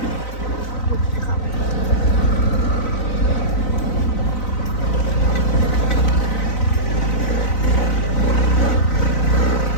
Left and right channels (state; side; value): late; right; 4.0 ms